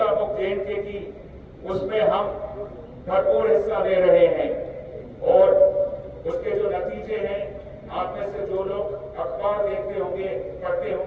मुक्त जेएनके की, उसमें हम भरपूर हिस्सा ले रहे हैं और उसके जो नतीजे हैं, आप में से जो लोग अखबार देखते होंगे, पढ़ते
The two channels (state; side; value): identical; both; correlation 1.00